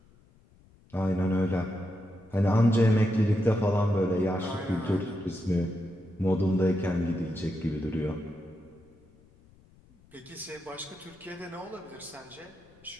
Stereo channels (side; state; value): left; noise; rumble, 28 dB below the sound